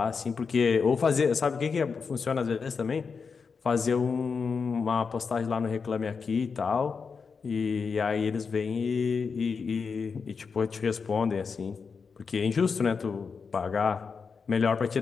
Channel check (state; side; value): quieter; right; 5.4 dB